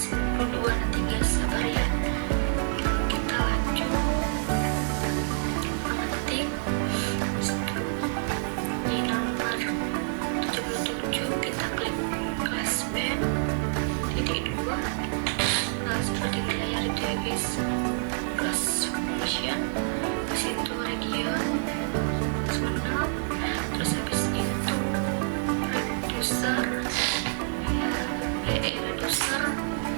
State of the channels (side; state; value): left; silent; digital silence